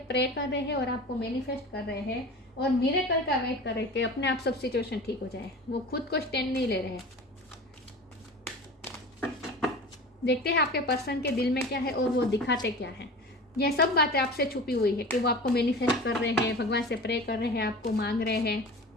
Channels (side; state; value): both; normal; correlation 0.35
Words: प्रे कर रहे हैं और आपको मैनिफेस्ट कर रहे हैं और मिरेकल का वेट कर रहे हैं कि अपने आप सब सिचुएशन ठीक हो जाए। वो खुद को स्टैंड नहीं ले रहे हैं। देखते हैं आपके पर्सन के दिल में क्या है और वो दिखाते क्या है। यह सब बातें आपसे छुपी हुई है कि वो आपको मैनिफेस्ट कर रहे हैं, भगवान से प्रे कर रहे हैं, आपको मांग रहे हैं,